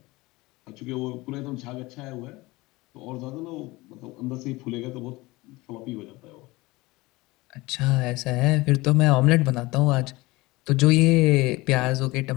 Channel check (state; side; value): quieter; right; 21.4 dB